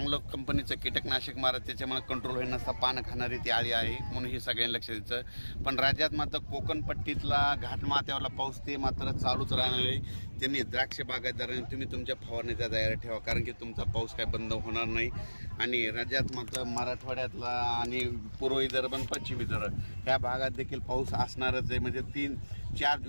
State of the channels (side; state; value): both; inverted; correlation -1.00